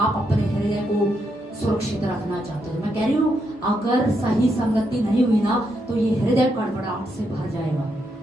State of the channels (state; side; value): normal; both; correlation 0.80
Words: अपने हृदय को सुरक्षित रखना चाहते हो, मैं कह रही हूँ अगर सही संगति नहीं हुई ना, तो ये हृदय गड़बड़ाहट से भर जाएगा।